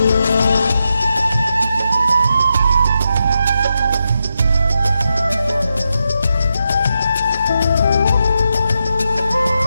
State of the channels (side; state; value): both; inverted; correlation -0.86